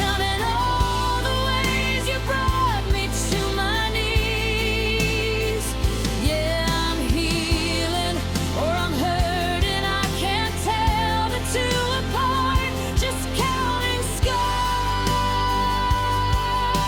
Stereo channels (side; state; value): both; identical; correlation 1.00